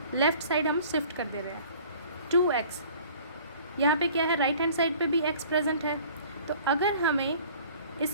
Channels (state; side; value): inverted; both; correlation -0.50